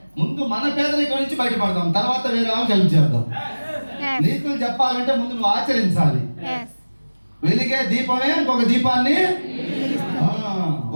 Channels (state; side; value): inverted; both; correlation -1.00